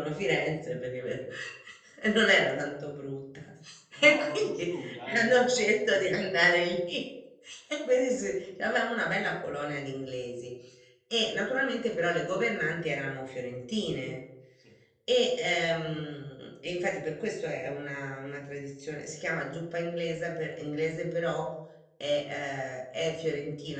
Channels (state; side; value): identical; both; correlation 1.00